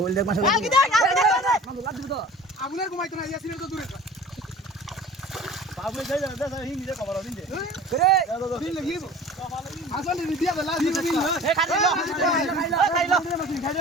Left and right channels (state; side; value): normal; both; correlation 0.42